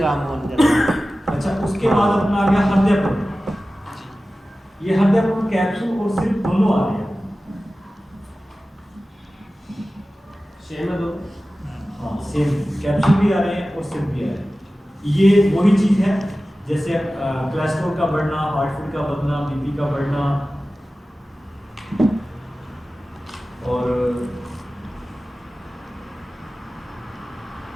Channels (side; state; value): both; normal; correlation 0.96